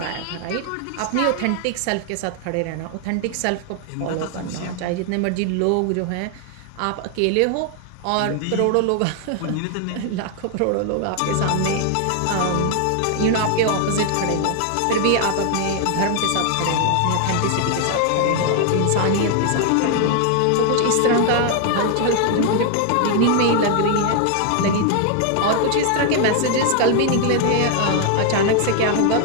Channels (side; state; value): both; different; correlation 0.00